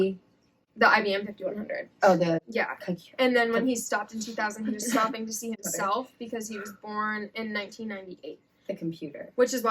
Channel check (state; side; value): identical; both; correlation 1.00